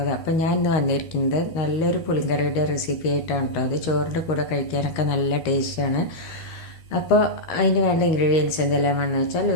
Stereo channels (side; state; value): right; late; 13 ms